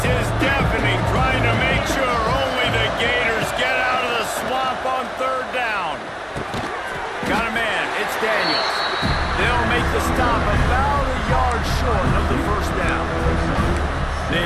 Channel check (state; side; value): identical; both; correlation 1.00